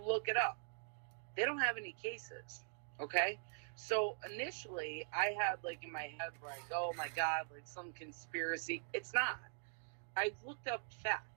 look it up, they don't have any cases, okay? So initially, I had like in my head, like, oh my God, like some conspiracy. It's not. I looked up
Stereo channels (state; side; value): silent; left; digital silence